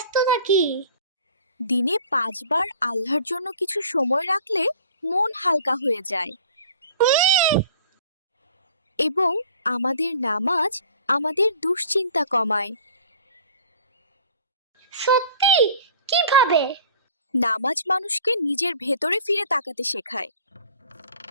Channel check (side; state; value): both; inverted; correlation -0.47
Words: থাকি। দিনে 5 বার আল্লাহর জন্য কিছু সময় রাখলে মন হালকা হয়ে যায়। এবং আমাদের নামাজ আমাদের দুশ্চিন্তা কমায়। সত্যি? কিভাবে? নামাজ মানুষকে নিজের ভেতরে ফিরে তাকাতে শেখায়।